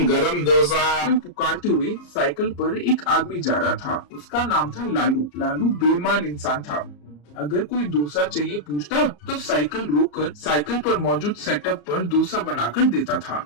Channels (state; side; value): late; right; 34 ms